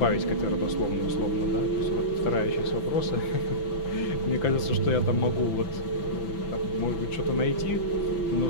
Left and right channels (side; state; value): right; late; 5.9 ms